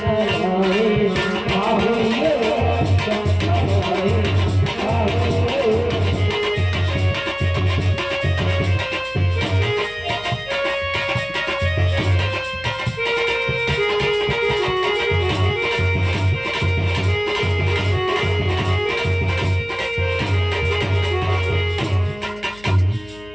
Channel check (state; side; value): noise; left; hum, 22 dB below the sound